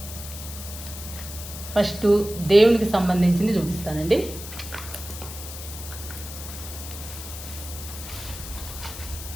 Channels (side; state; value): left; noise; hiss, 11 dB below the sound